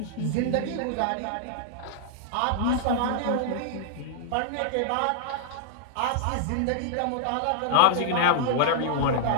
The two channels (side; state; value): both; different; correlation -0.01